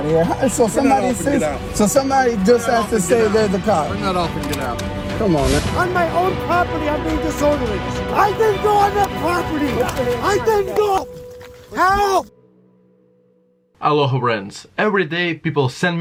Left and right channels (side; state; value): both; identical; correlation 1.00